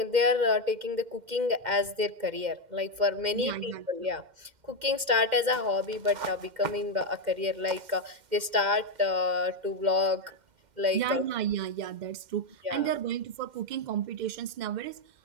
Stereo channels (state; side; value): late; left; 2.1 ms